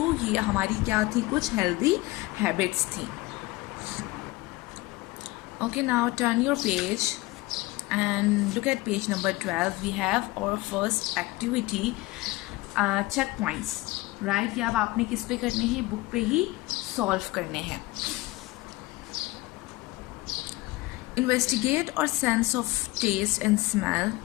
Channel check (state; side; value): quieter; right; 20.7 dB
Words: ये हमारी क्या थी, कुछ हेल्दी हैबिट्स थी। Okay, now turn your page and look at page number 12. We have our first activity, checkpoints, right? ये अब आपने किस पे करने हैं, बुक पे ही सॉल्व करने हैं। Investigate or sense of taste and smell.